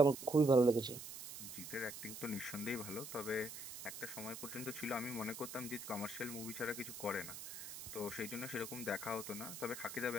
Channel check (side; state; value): right; noise; hiss, 10 dB below the sound